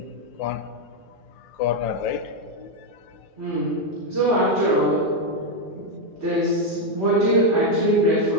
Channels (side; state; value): both; normal; correlation 0.04